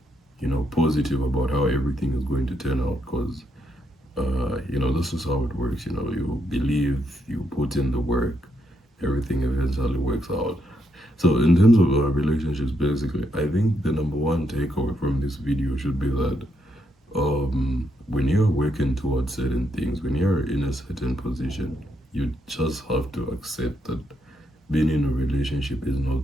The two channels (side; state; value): both; normal; correlation 0.77